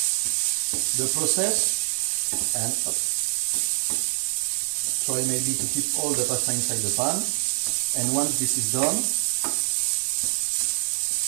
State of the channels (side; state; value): left; silent; 55 dB below the other